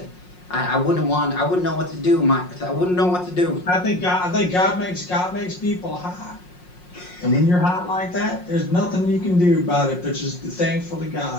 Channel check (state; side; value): late; right; 5.5 ms